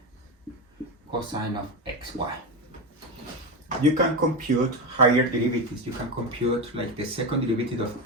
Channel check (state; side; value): normal; both; correlation 0.16